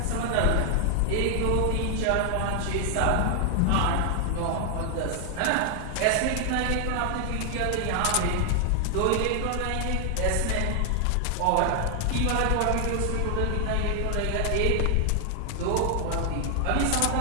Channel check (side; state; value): both; different; correlation 0.00